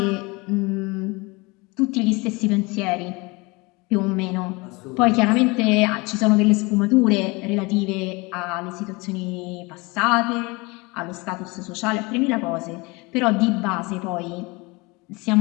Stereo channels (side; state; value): right; quieter; 25.6 dB